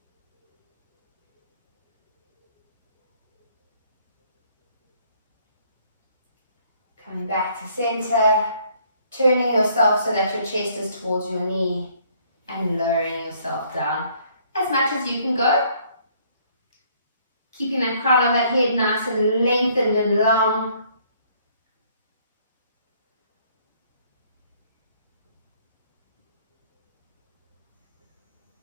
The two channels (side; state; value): both; inverted; correlation -0.63